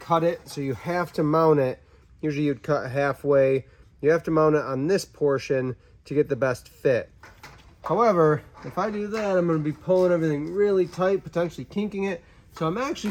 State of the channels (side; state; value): both; identical; correlation 1.00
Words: it. So you have to mount it. Usually you'd cut halfway. You have to mount it on this portion to get the best fit. However, if I do that, I'm going to be pulling everything really tight, potentially kinking it. So I'm